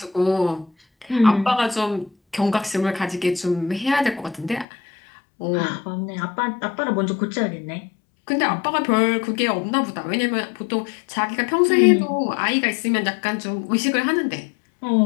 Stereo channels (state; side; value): drops out; right; at 4.7 s